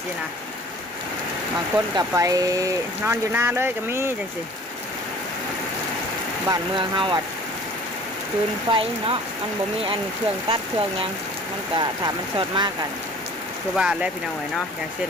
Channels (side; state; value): both; normal; correlation 0.47